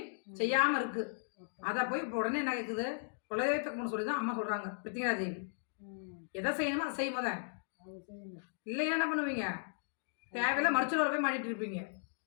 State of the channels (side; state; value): right; silent; digital silence